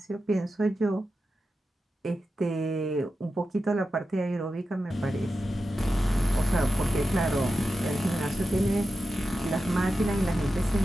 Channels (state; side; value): normal; both; correlation 0.91